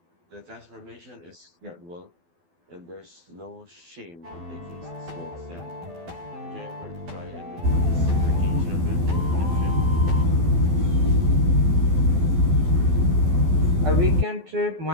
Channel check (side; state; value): left; late; 12 ms